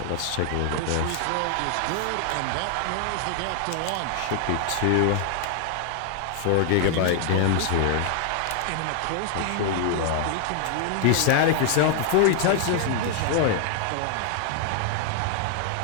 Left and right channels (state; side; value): different; both; correlation 0.00